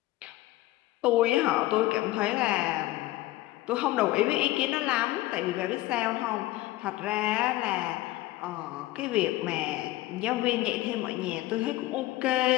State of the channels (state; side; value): quieter; right; 17.4 dB